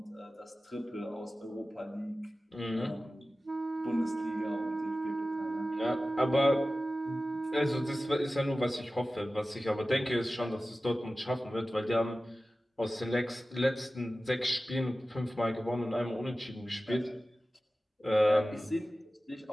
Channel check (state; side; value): normal; both; correlation 0.95